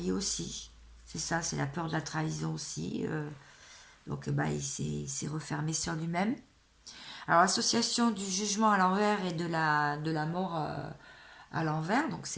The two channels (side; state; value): both; identical; correlation 1.00